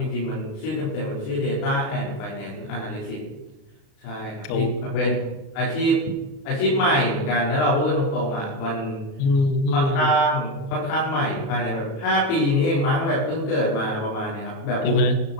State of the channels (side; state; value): right; late; 36 ms